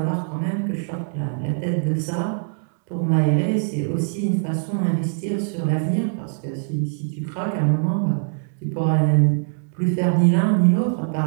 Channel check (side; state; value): left; silent; digital silence